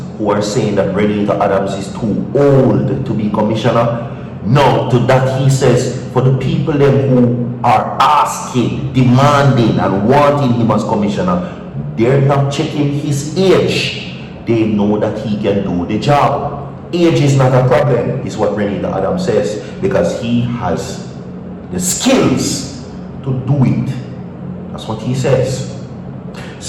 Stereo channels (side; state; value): both; identical; correlation 1.00